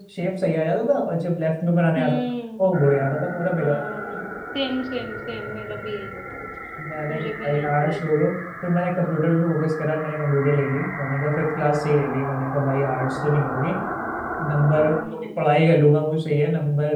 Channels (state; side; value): identical; both; correlation 1.00